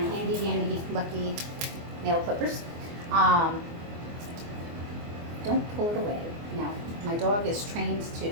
dandy lucky nail clippers. Don't pull it away. No, my dog is trained to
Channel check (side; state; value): left; late; 24 ms